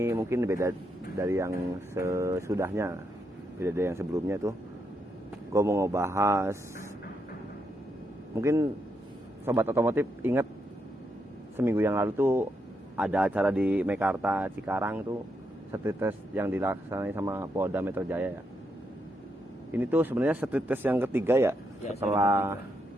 mungkin beda dari yang sesudahnya, beda dari yang sebelumnya tuh. Gua mau ngebahas, mungkin sobat otomotif ingat seminggu yang lalu tuh ada acara di Mekarta Cikarang tuh, street test yang dilaksanain sama Polda Metro Jaya ya. Ini tuh sebenarnya street test yang ketiga ya, setelah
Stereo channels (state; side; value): normal; both; correlation 0.80